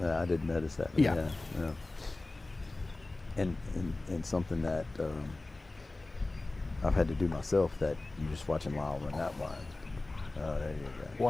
didn't notice that. Yeah. And something that I've had to do myself, that you're just watching Lyle run that blind. Oh, there you go.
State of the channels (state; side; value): quieter; right; 3.0 dB